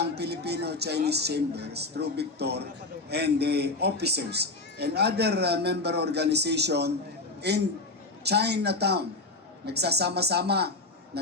Filipino-Chinese Chambers through Victor and the officers and other member organization in Chinatown. Nagsasama-sama,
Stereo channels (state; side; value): quieter; right; 3.2 dB